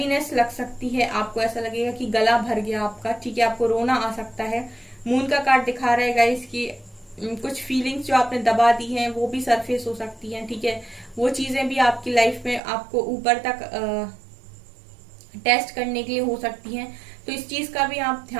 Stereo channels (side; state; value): left; drops out; at 12.6 s